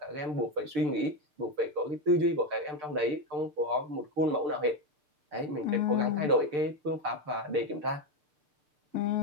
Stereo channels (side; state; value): left; late; 6.7 ms